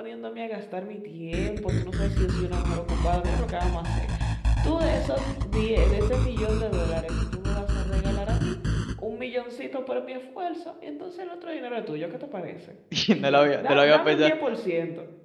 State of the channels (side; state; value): both; identical; correlation 1.00